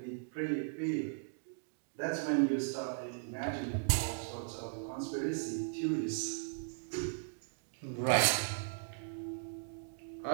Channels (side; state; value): left; silent; digital silence